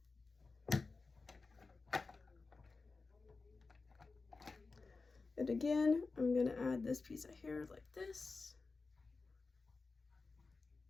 And again, I'm gonna add this piece of hair like this.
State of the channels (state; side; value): quieter; right; 4.0 dB